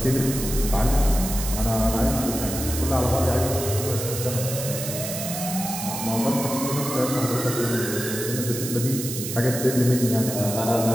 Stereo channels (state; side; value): noise; right; hiss, 6 dB below the sound